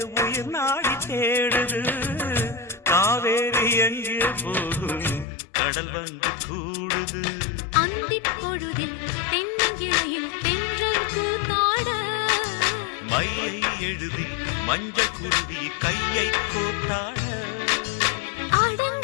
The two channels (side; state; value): right; drops out; at 5.2 s